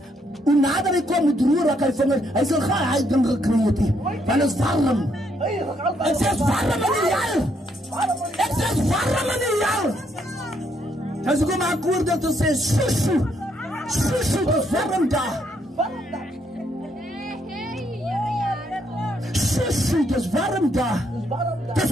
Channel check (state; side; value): normal; both; correlation 0.73